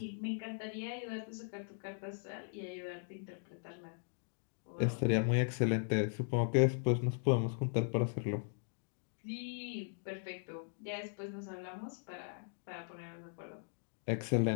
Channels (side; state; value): right; silent; digital silence